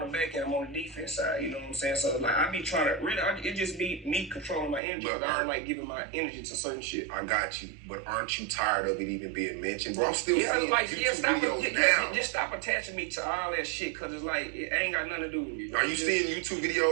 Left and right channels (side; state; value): left; drops out; at 4.8 s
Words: the back end, I'm on the defense side, you know what I'm saying? So like I be trying to it just be me controlling my energy. But I don't like giving my energy to certain shit. I got you, but aren't you tired of it even being mentioned? Bro, I'm still seeing like YouTube videos now. Just stop attaching me to all that shit, cause it's like it ain't got nothing to do with me. Are you seeing YouTube